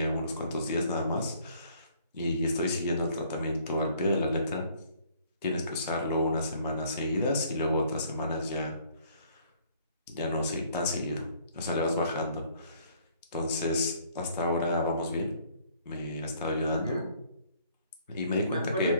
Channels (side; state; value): both; inverted; correlation -0.61